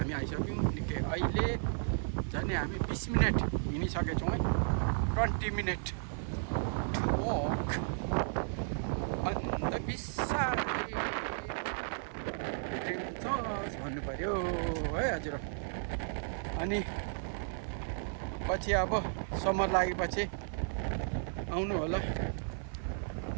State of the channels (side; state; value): left; silent; 55 dB below the other